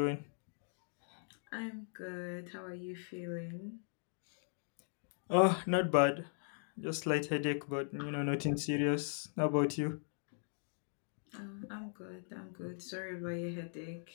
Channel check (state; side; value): silent; right; digital silence